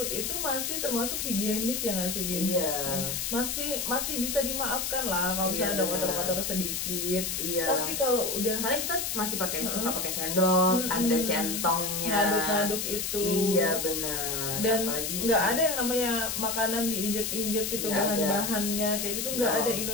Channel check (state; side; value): noise; left; hiss, 2 dB below the sound